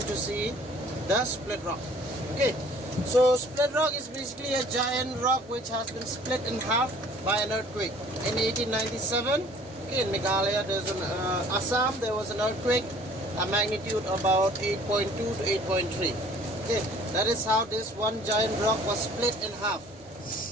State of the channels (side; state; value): both; normal; correlation 0.53